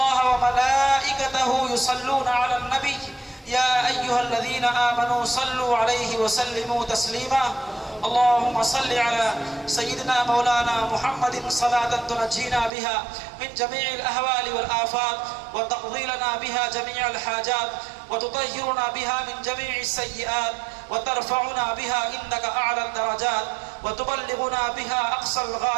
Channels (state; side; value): drops out; left; at 12.7 s